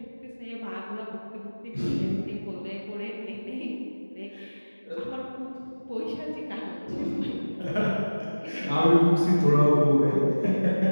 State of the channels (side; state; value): both; inverted; correlation -1.00